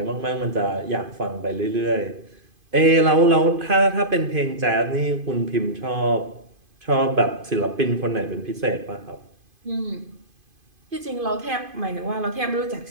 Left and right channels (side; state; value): left; late; 2.5 ms